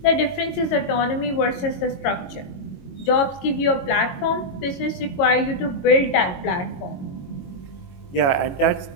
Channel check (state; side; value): late; right; 22 ms